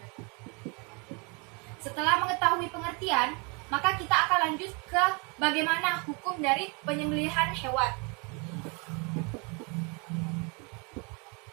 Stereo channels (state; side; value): quieter; left; 31.9 dB